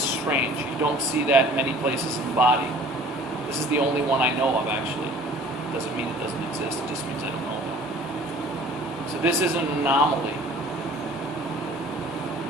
strange. You don't see that many places in the body. This is the only one I know of, actually. Doesn't mean it doesn't exist. exist, it just means I don't know them. So this is an anomaly.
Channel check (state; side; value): normal; both; correlation 0.49